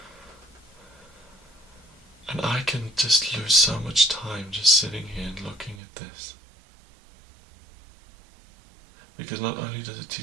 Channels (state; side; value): drops out; left; at 5.8 s